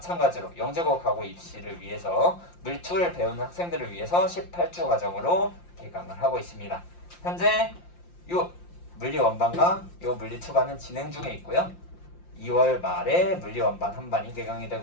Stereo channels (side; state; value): right; late; 5.7 ms